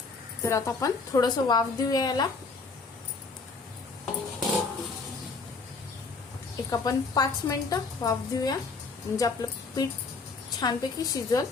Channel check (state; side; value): quieter; right; 4.2 dB